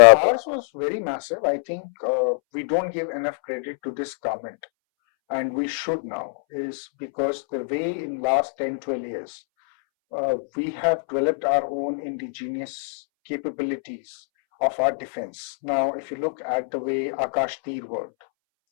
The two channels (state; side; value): silent; right; 62 dB below the other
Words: was very massive. I think we don't give enough credit to this government, and we should now, is because the way in last 10-12 years we have developed our own indigenous capabilities of our defense. Now, if you look at the way Akash Tir worked,